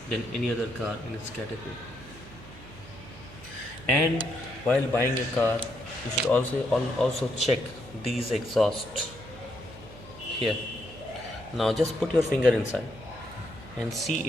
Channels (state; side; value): noise; right; hum, 18 dB below the sound